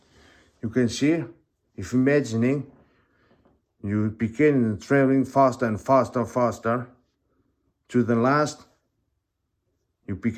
You can see, if imagining, you begin traveling faster and faster, to the last, you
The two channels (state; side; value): identical; both; correlation 1.00